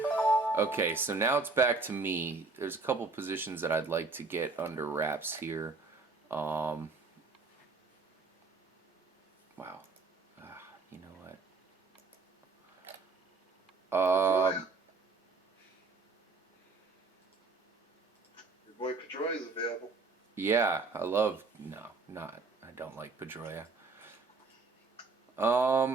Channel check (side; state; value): left; quieter; 3.9 dB